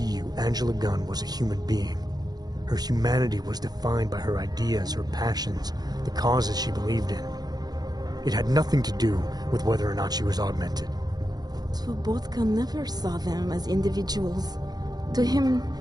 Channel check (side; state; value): left; late; 0.19 ms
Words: you Angela Gunn was a human being. Her humanity was defined by her ideas, her passions, the causes she believed in. It had nothing to do with whether or not she was augmented. Svobotka never saw them as individuals. To him,